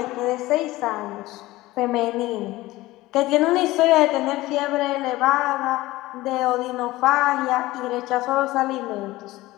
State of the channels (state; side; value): quieter; right; 18.3 dB